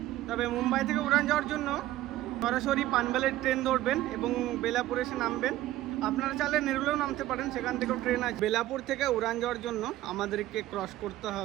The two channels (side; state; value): left; quieter; 15.0 dB